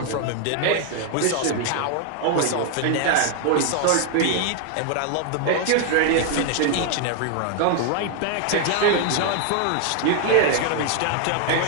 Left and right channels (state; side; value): different; both; correlation 0.00